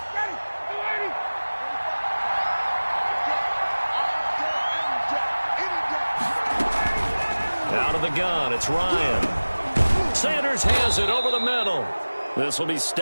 Out of the gun, it's Ryan. Sanders has it over the middle. This will be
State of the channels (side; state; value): both; inverted; correlation -1.00